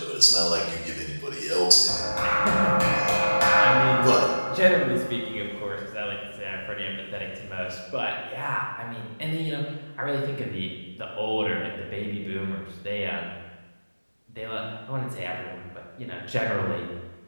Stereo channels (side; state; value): both; inverted; correlation -1.00